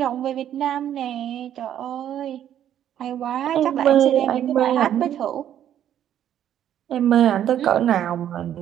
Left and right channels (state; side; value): quieter; left; 10.6 dB